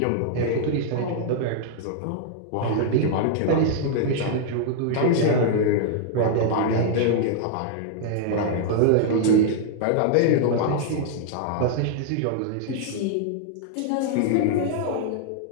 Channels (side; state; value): both; different; correlation -0.01